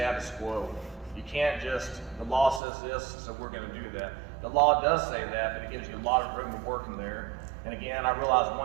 quo. You can't just, the law says this, so we're going to do that. The law does say that, but it gives you a lot of room to work in there. And again, I realize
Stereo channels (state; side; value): drops out; left; at 2.6 s